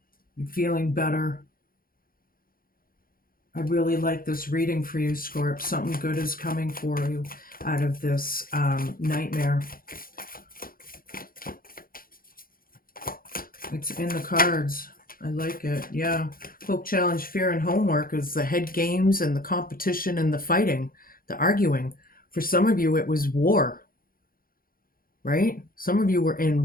You're feeling better. I really like this reading for you, Scorp. Something good is coming for you out of this nightmare. It's in the cards. I like it. Yeah. Hope Challenge, fear, and homework is the head games and the competition and the fighting, the arguing. For some of you, it was war, right? Some of you were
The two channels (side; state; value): right; late; 0.42 ms